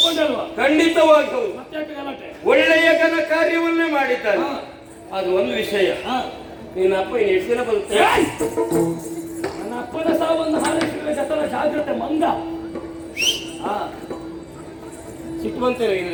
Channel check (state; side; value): identical; both; correlation 1.00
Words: ಖಂಡಿತವಾಗಿ ಹೌದು. ಮತ್ತೆ ಒಳ್ಳೆಯ ಘನ ಕಾರ್ಯವನ್ನೇ ಮಾಡಿದ್ದಾನೆ. ಅದು ಒಂದು ವಿಷಯ. ನಿನ್ನ ಅಪ್ಪ ಇನ್ನು ಎಷ್ಟು ದಿನ ಬರುತ್ತೆ? ನನ್ನ ಅಪ್ಪನ ಸಾವನ್ನು ಹಾರೈಸಿದ ಜತನ ಜಾಗ್ರತೆ ಮಂಗ. ಸಿಟ್ಟು ಬಂತೇನೆ